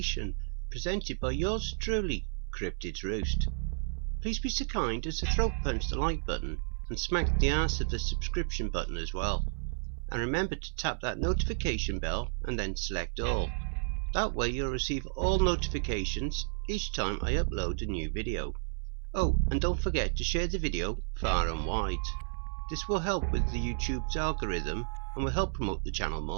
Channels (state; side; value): silent; left; 57 dB below the other